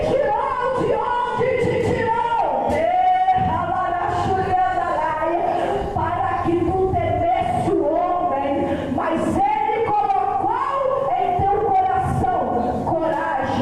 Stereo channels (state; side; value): noise; left; hum, 23 dB below the sound